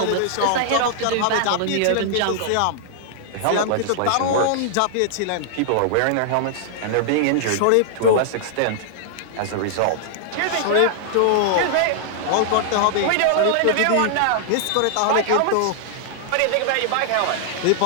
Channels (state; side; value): different; both; correlation -0.01